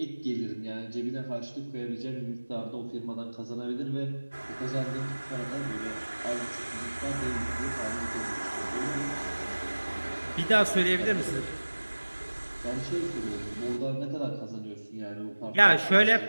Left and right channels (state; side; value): inverted; both; correlation -1.00